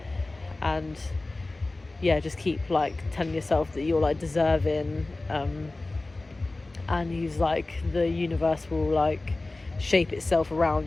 yeah, just keep like telling yourself that you're like deserving, and he's like, the universe will like shape itself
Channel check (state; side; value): quieter; right; 3.0 dB